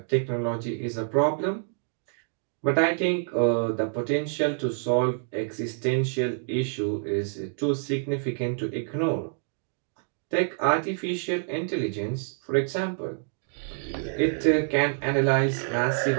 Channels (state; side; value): silent; left; digital silence